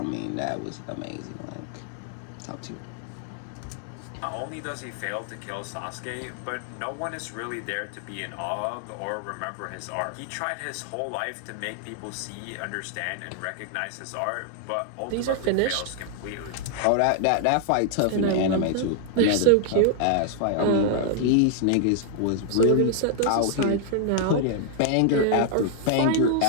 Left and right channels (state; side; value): different; both; correlation 0.00